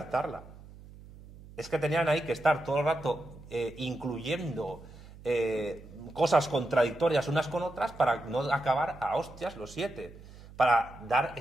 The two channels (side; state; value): right; noise; hum, 19 dB below the sound